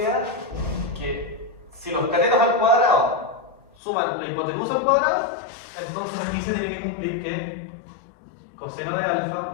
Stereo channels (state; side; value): drops out; right; at 3.6 s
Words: que si los catetos al cuadrado suman la hipotenusa al cuadrado, entonces aquí se tiene que cumplir que coseno de